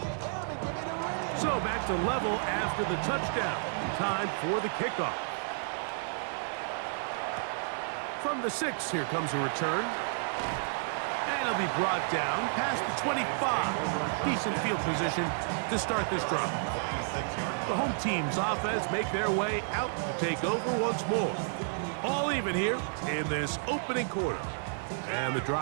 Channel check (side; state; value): left; silent; 57 dB below the other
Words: So back to level after the touchdown. Time for the kickoff. From the 6, here comes a return. And it'll be brought down past the 25. Decent field position to start this drive. The home team's offense make their way out to take over once more. All even here in this opening quarter. And the